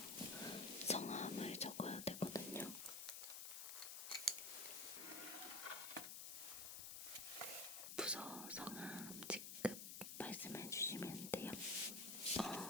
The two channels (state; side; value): noise; left; hiss, 5 dB below the sound